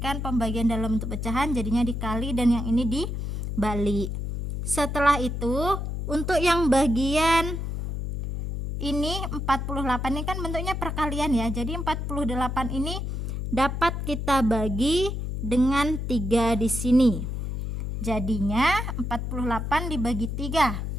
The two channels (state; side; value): noise; left; hum, 3 dB below the sound